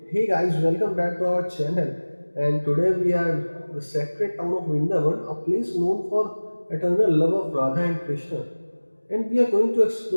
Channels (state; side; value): inverted; both; correlation -1.00